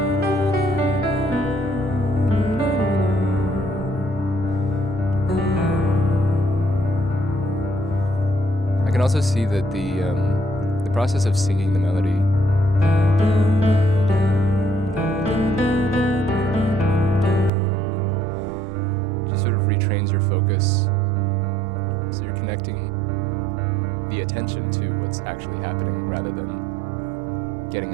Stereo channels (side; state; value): left; drops out; at 17.5 s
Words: I can also see that the process of singing the melody just sort of retrains your focus, so you're connecting the attention to what's actually happening rather than getting